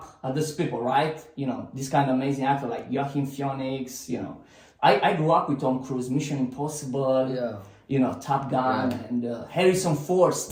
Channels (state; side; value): identical; both; correlation 1.00